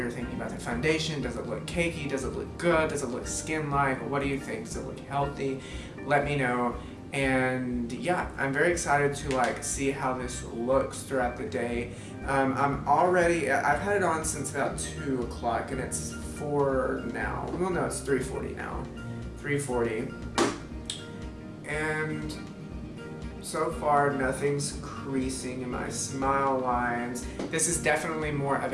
thinking about the foundation? Does it look cakey? Does it look good? Does it look skin-like? What do you think? Does it look healthy? Let me know. And yeah, I'm very excited to like see how this looks throughout the day. I've had it on since about 2 o'clock and it's 4 now. Well, no, it's 3:40 now. 3:40. And so far, nothing's creasing in my smile lines. This is definitely more of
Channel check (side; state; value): both; identical; correlation 1.00